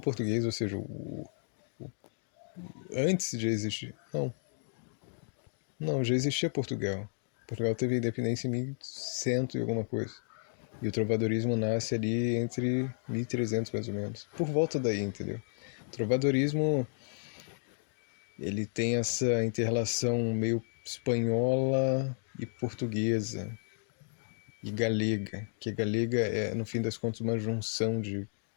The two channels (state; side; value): silent; right; digital silence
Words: ou seja, antes de existir. Não, já existia Portugal. Portugal teve independência em 1100 e alguma coisa. E o trovadorismo nasce ali entre 1300 mais ou menos. Por volta daí, entendeu? O trovadorismo, ele tem essa inter-relação meio espanhola e portuguesa e galega, que a galega é, no fim das contas, uma junção